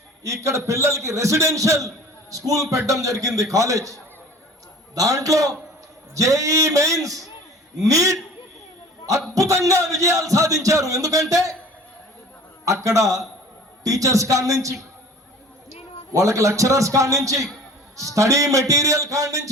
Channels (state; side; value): normal; both; correlation 0.45